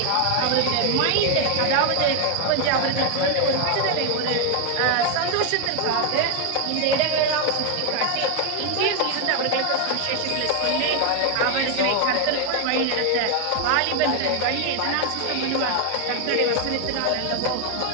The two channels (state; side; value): different; both; correlation 0.01